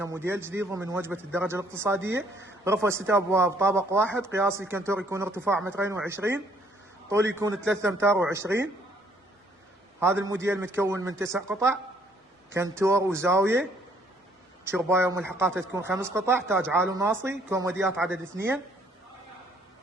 موديل جديد ضمن وجبه الدرجه الاقتصاديه. غرفه 6 ابواب، طابق واحد، قياس الكنتور يكون ارتفاع 2.20 متر، طول يكون 3 امتار و20. هذا الموديل متكون من 9 قطع، كنتور وزاويه، شربايه وملحقاتها تكون 5 قطع، تاج عالي وناصي، كوموديات عدد 2.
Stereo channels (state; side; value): normal; both; correlation 0.64